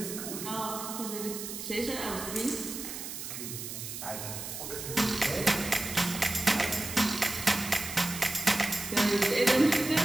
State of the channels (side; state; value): right; noise; hiss, 8 dB below the sound